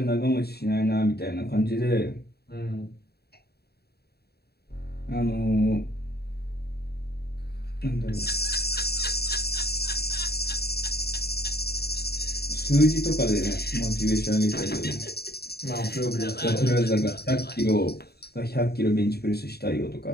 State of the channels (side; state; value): right; late; 0.46 ms